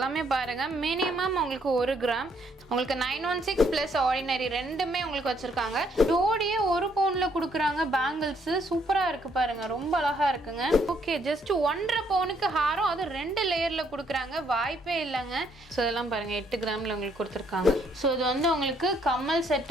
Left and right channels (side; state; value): both; normal; correlation 0.69